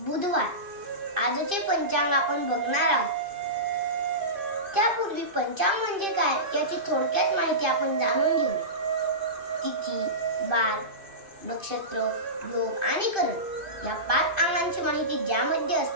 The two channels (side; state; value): left; late; 2.6 ms